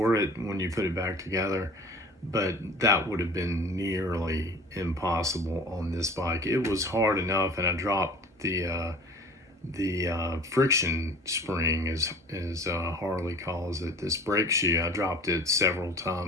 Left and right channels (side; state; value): both; normal; correlation 0.44